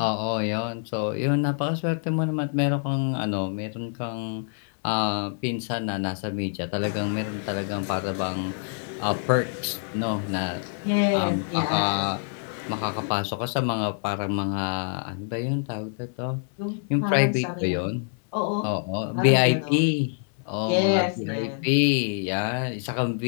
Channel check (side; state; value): right; silent; 61 dB below the other